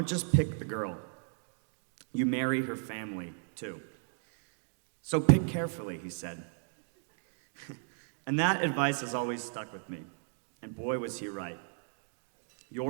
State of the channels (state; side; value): silent; left; 54 dB below the other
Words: just pick the girl, you marry her family too. So pick carefully, he said. And that advice has always stuck with me, and boy was he right.